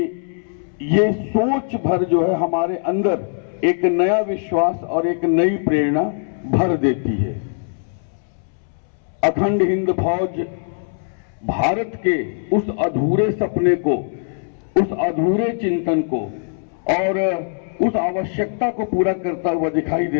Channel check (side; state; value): right; silent; 65 dB below the other